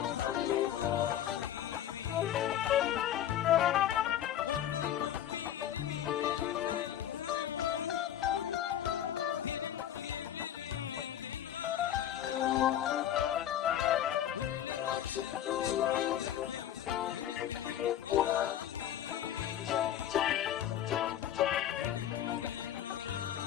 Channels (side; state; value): right; quieter; 11.0 dB